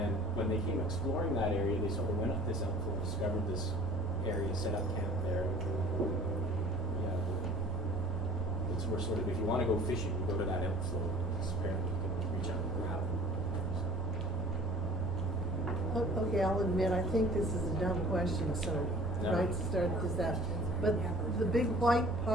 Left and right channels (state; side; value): normal; both; correlation 0.47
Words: when they came exploring that area, they sort of went up this outflow, discovered this area, set up camp there. Yeah, it's where sort of, if you want to go fishing, you go to that outflow. Apparently you can reach out and grab it. Okay, I'll admit, I think this is a dumb question, so No. right to start this out. But the big white